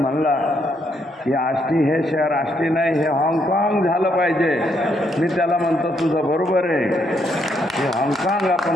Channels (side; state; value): both; normal; correlation 0.74